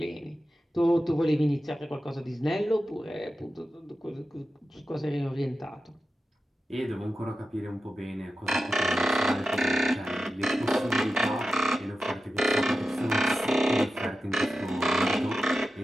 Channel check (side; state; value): both; normal; correlation 0.92